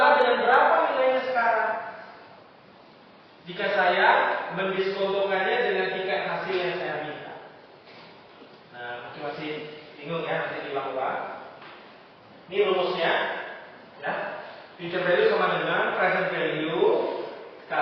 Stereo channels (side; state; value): both; identical; correlation 1.00